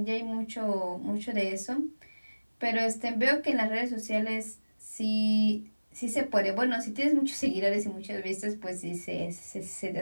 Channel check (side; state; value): both; inverted; correlation -1.00